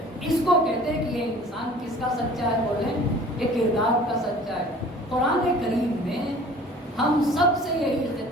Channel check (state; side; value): normal; both; correlation 0.47